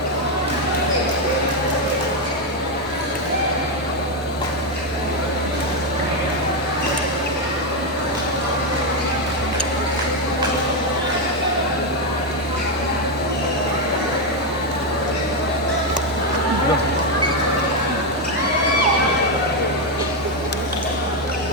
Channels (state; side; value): normal; both; correlation 0.05